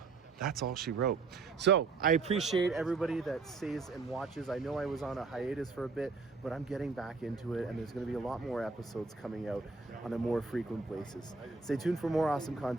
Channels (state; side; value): quieter; left; 4.3 dB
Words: that's all she wrote. So I appreciate everybody that stays and watches. I know I was on a hiatus for a bit, but I'm getting back into it, and there's going to be a lot more episodes coming out on a more frequent basis. Stay tuned for more awesome